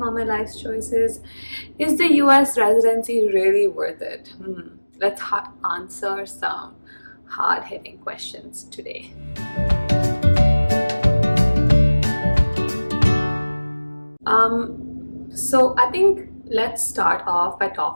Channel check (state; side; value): inverted; both; correlation -1.00